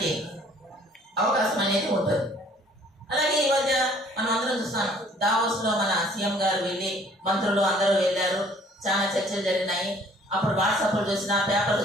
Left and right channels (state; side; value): normal; both; correlation 0.57